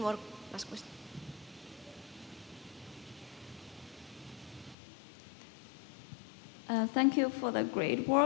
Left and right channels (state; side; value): drops out; right; at 4.8 s